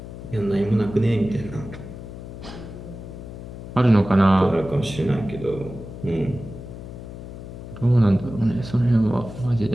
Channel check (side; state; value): left; noise; hum, 12 dB below the sound